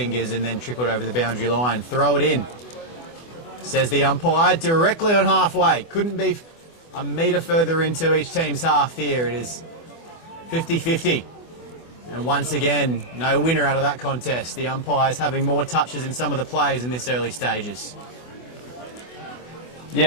and then trickled over the boundary line. Throw it in, says the umpire, directly on halfway. Couldn't be a metre further into each team's half here. It is 50-50. And once again, no winner out of that contest. The umpires having more touches than some of the players in this early stages.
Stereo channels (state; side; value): late; right; 24 ms